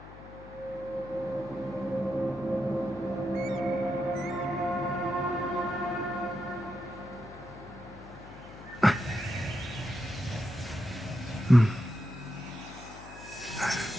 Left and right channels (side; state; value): left; noise; hum, 16 dB below the sound